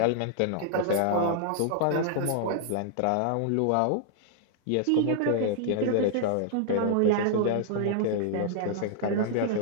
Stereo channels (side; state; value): both; different; correlation -0.01